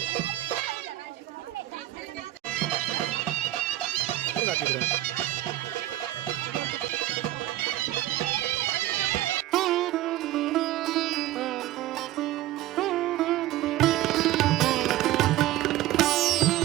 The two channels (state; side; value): quieter; left; 15.1 dB